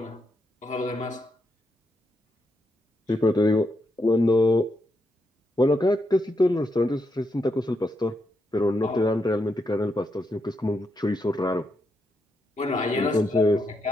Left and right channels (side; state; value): both; normal; correlation 0.82